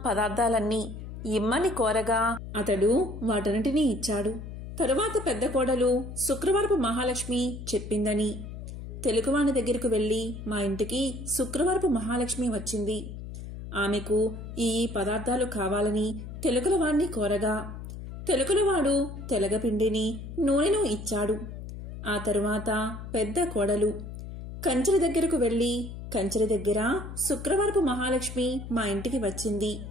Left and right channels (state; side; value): noise; left; hum, 10 dB below the sound